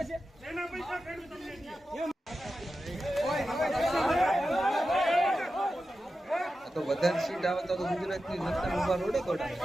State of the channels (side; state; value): both; normal; correlation 0.92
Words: તો વધારે સીટ આવે તો ગુજરાતની જનતા ઉભા રોડે દોડાય.